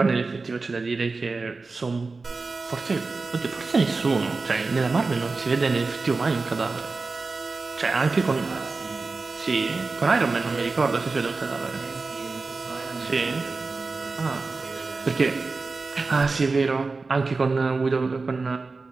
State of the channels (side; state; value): left; quieter; 3.9 dB